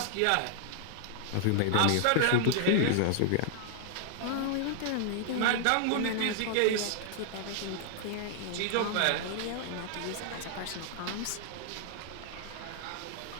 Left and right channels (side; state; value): both; different; correlation 0.00